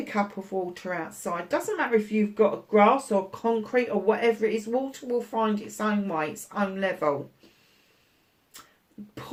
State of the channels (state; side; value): identical; both; correlation 1.00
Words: cup of water outside. Doesn't matter if you've got grass or concrete or whatever it is. Water will find its own way, its own level.